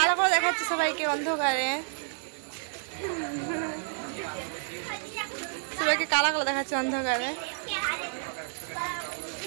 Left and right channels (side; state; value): left; silent; 58 dB below the other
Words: করে দেখাচ্ছে সবাইকে অন্ধকারে, সবাইকে কালো কালো দেখাচ্ছে অন্ধকারে।